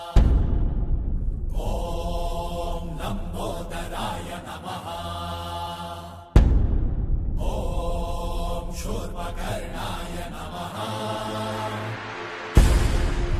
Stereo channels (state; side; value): identical; both; correlation 1.00